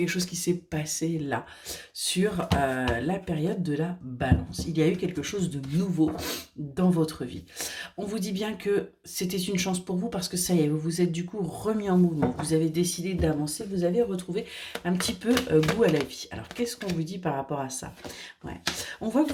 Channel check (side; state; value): both; identical; correlation 1.00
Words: chose qui s'est passé là, sur la période de la balance. Il y a eu quelque chose de nouveau dans votre vie. On vous dit bien que c'était une chance pour vous parce que ça y est, vous vous êtes du coup remis en mouvement. Vous avez décidé d'avancer, vous avez retrouvé un petit peu goût à la vie. Alors, qu'est-ce qu'on vous dit par rapport à ça? Ouais. On voit que